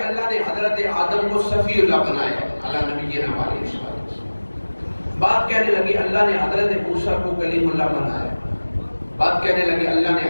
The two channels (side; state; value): both; inverted; correlation -1.00